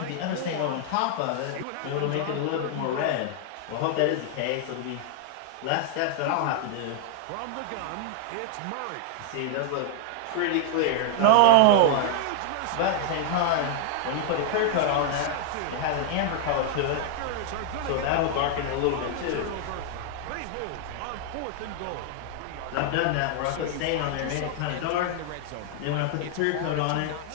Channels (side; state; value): both; different; correlation 0.00